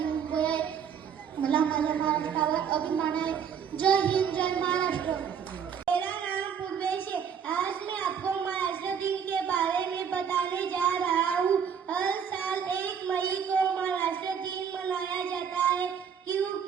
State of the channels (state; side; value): quieter; left; 7.5 dB